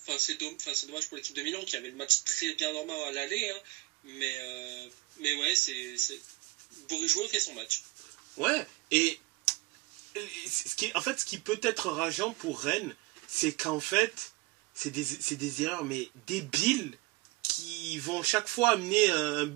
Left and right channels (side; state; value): left; quieter; 21.4 dB